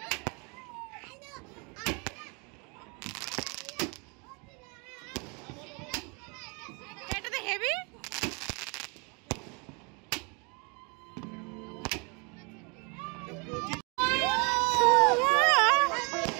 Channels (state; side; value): quieter; left; 31.8 dB